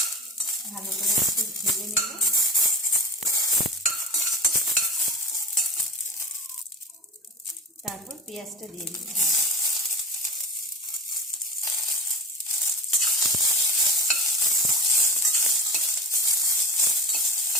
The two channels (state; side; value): normal; both; correlation 0.32